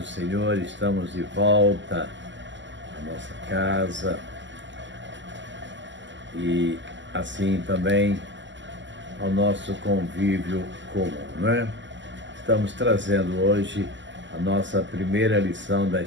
Senhor. Estamos de volta à nossa casa e assim também ao nosso convívio comum, né? Estamos trazendo hoje a nossa primeira lição da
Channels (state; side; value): late; left; 0.54 ms